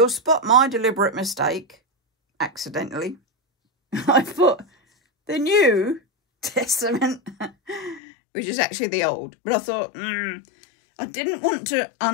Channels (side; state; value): right; drops out; at 8.0 s